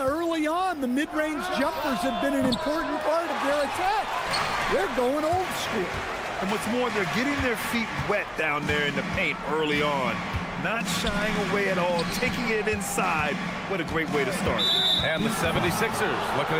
early on, the mid-range jumpers have been an important part of their attack. They're going old school. And what's more, they're getting their feet wet down there in the paint early on. Not shying away at all, taking it inside. What a great way to start. And the 76ers, looking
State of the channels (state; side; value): identical; both; correlation 1.00